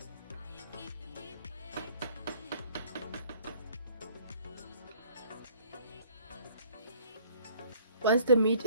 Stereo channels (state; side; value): inverted; both; correlation -0.58